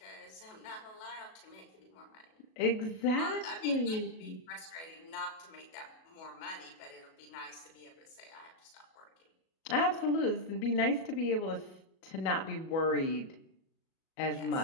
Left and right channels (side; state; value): right; late; 37 ms